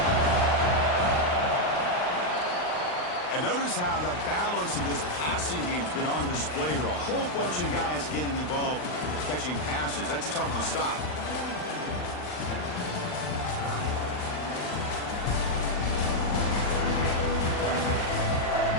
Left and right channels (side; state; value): right; late; 39 ms